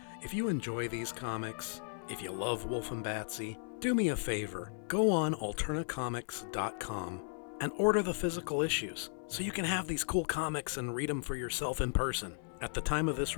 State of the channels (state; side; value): silent; right; 54 dB below the other